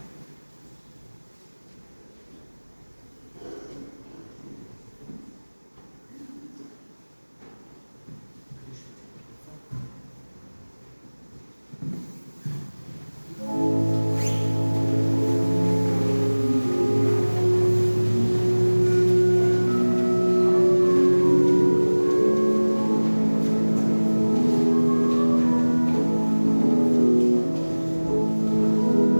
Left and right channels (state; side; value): inverted; both; correlation -1.00